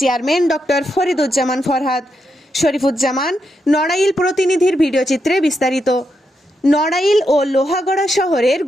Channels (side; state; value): both; normal; correlation 0.83